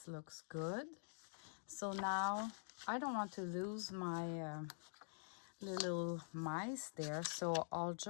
looks good. So now I don't want to lose my little mice there, so I'll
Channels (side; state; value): right; silent; digital silence